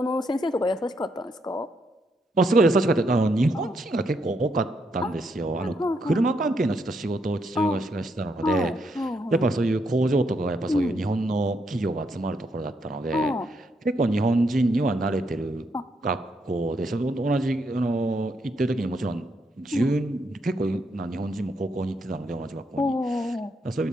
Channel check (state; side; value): normal; both; correlation 0.77